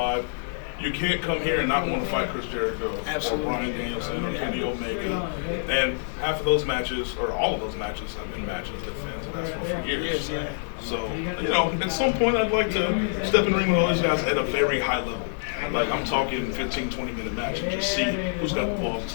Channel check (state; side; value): silent; right; digital silence